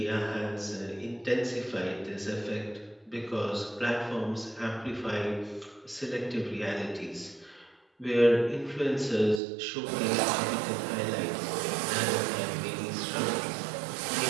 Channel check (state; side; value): drops out; left; at 9.4 s